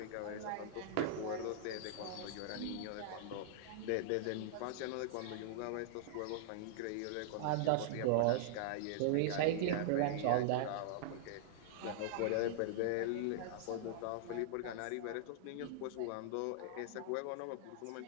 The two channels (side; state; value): both; different; correlation -0.01